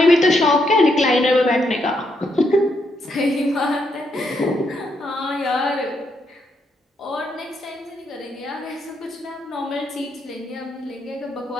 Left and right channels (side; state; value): both; normal; correlation 0.78